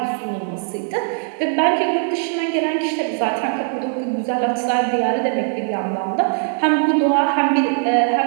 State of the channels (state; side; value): silent; left; 58 dB below the other